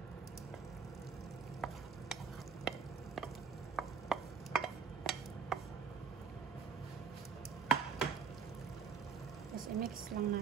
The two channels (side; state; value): left; quieter; 6.1 dB